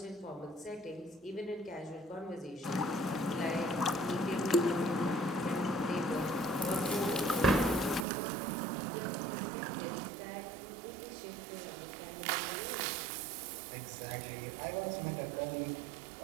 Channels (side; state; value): left; drops out; at 8.1 s